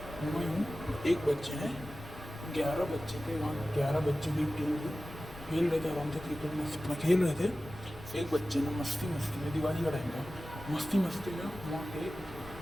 एक बच्चे हैं, 11 बच्चे थे वहाँ, 11 बच्चों की टीम थी, खेल रहे थे आराम से क्रिकेट में अपना खेल रहे थे। एक बच्चे ने मस्ती में, दिवाली का टाइम था, मस्ती में वहाँ पे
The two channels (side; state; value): left; noise; rumble, 17 dB below the sound